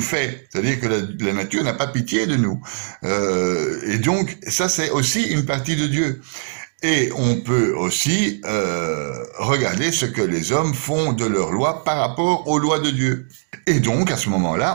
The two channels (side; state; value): left; silent; digital silence